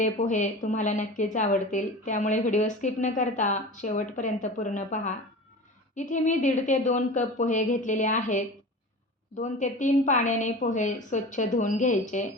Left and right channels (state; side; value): normal; both; correlation 0.34